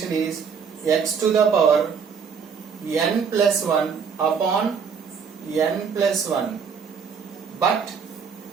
is x to the power n plus 1 upon n plus 1. But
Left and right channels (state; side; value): quieter; left; 6.3 dB